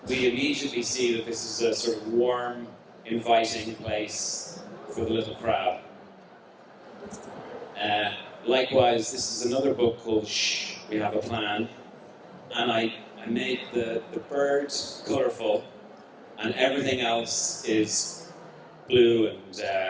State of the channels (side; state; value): both; identical; correlation 1.00